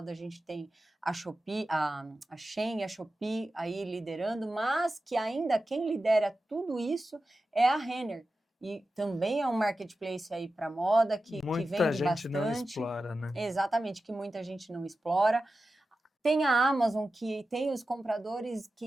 a gente tem a Shopee, a Shein e a Shopee aí liderando, mas que ainda quem lidera tudo isso é a Renner. E também é um marketplace aí para moda que vende bastante. Muita gente não explora, né? Exatamente, que muita gente não explora. Tem a Amazon, que tem os compradores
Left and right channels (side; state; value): both; normal; correlation 0.93